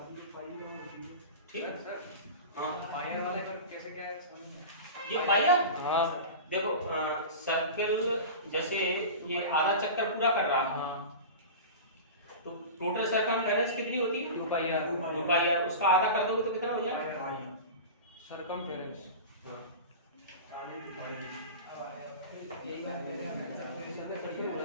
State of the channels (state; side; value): inverted; both; correlation -0.31